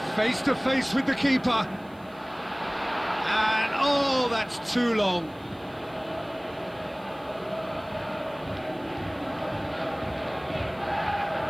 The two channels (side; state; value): right; noise; hiss, 29 dB below the sound